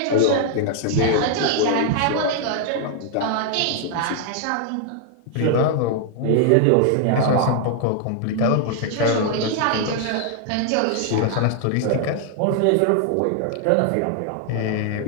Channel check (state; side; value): different; both; correlation 0.00